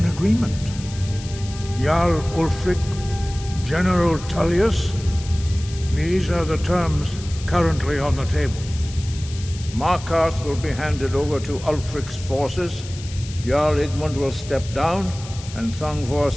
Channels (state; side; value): noise; left; hiss, 15 dB below the sound